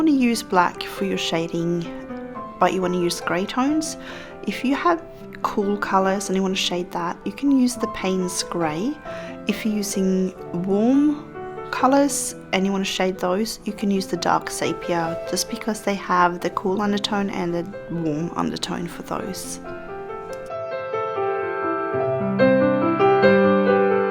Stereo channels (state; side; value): identical; both; correlation 1.00